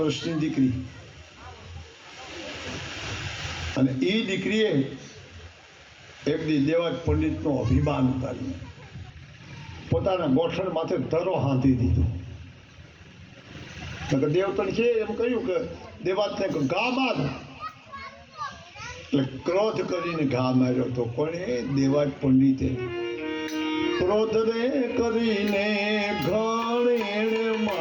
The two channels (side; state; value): both; identical; correlation 1.00